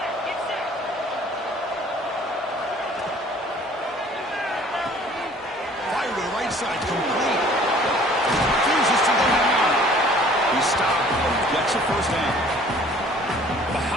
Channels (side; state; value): both; normal; correlation 0.53